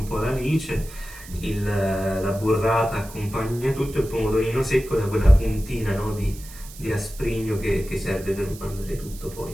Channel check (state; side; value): noise; right; hiss, 17 dB below the sound